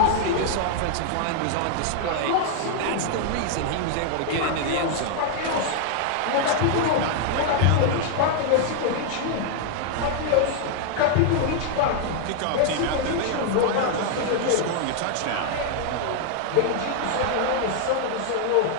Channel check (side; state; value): both; different; correlation 0.00